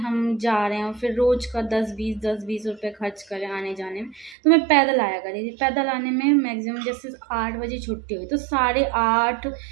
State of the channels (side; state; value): left; drops out; at 4.4 s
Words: जा रहे हैं और फिर रोज़ का 10-20 रुपए खर्च करें आने जाने में, तो मैं पैदल आया करी थी। पैदल आने में मैक्सिमम जैसे 8 बजे छुट्टी हुई तो 8:30